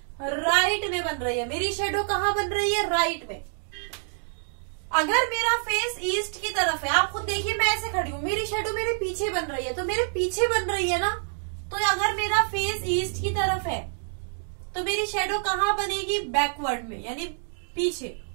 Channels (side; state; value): left; silent; digital silence